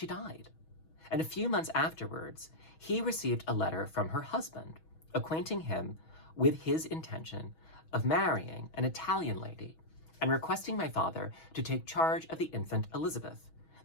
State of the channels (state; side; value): late; right; 6.2 ms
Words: died, and a few months afterwards, he received a letter from her husband, acquainting him with his intention of marrying an Italian lady and requesting my father to take charge of the infant Elizabeth,